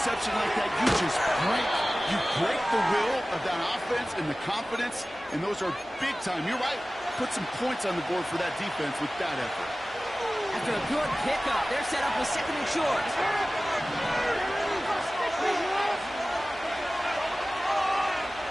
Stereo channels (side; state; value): both; normal; correlation 0.97